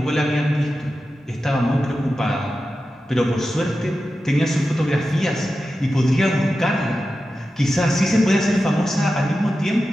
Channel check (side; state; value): both; normal; correlation 0.92